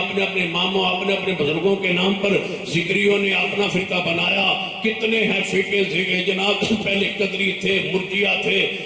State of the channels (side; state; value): both; identical; correlation 1.00